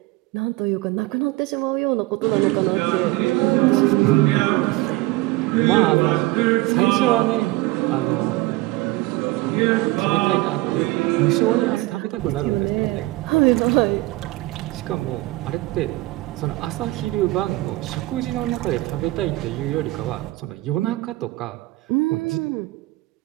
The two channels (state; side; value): quieter; left; 20.0 dB